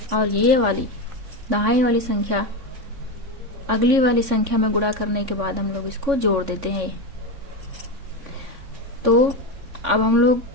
और ये वाली दहाई वाली संख्या अगली वाली संख्या में गुणा करने के बाद हम लोग इसको जोड़ देते हैं। तो अब हम लोग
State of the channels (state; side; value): late; left; 3.6 ms